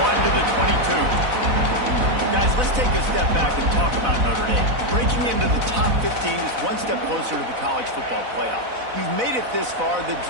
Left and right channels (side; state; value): left; late; 4.0 ms